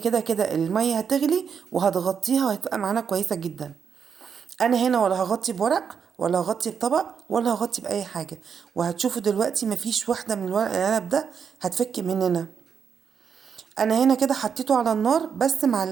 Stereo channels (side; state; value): left; quieter; 6.9 dB